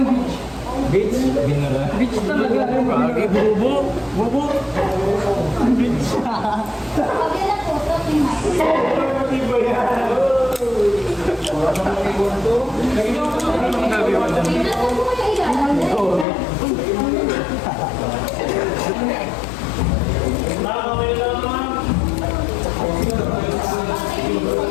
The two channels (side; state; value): right; drops out; at 16.2 s